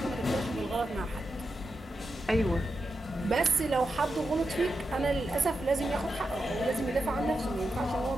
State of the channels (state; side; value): normal; both; correlation 0.88